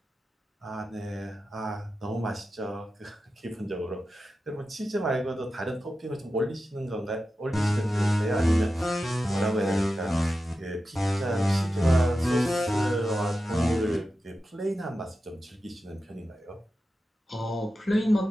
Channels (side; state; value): both; normal; correlation 0.92